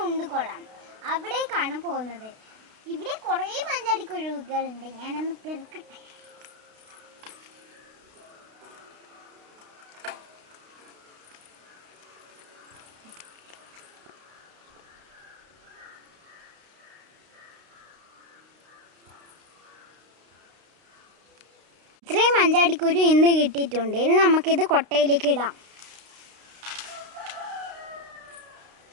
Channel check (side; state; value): left; late; 32 ms